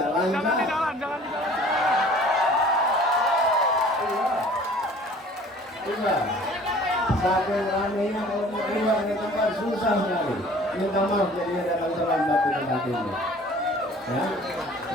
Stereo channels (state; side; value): normal; both; correlation 0.49